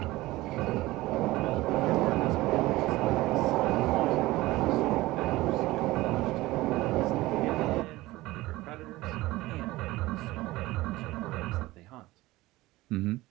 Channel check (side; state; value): left; quieter; 18.8 dB